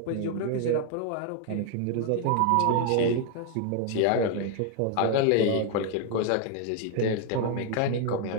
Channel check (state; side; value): different; both; correlation 0.00